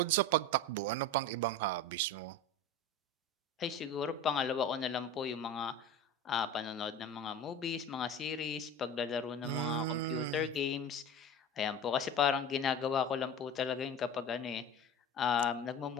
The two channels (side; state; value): both; normal; correlation 0.31